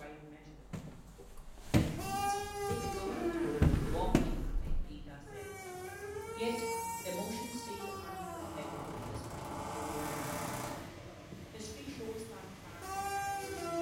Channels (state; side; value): identical; both; correlation 1.00